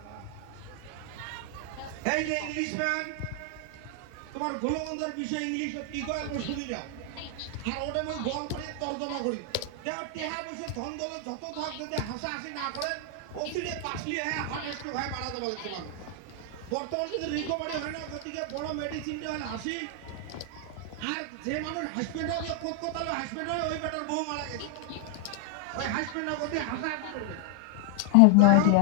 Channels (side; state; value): both; different; correlation 0.00